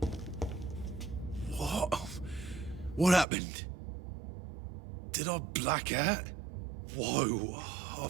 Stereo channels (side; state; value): left; drops out; at 3.2 s